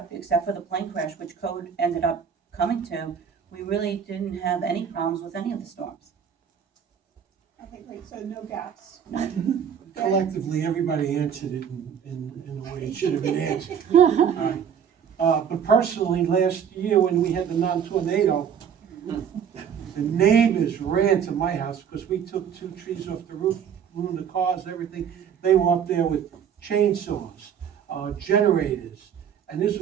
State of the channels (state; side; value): quieter; left; 7.9 dB